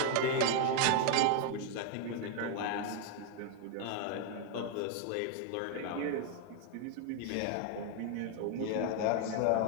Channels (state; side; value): different; both; correlation 0.01